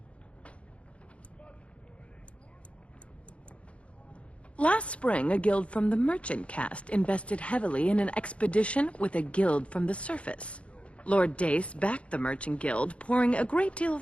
Last spring, a guild from the merchant caste invested heavily in an expedition with a guild from the surface. Lord Dace backed the merchant guild, pouring a great deal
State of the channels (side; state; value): right; late; 0.061 ms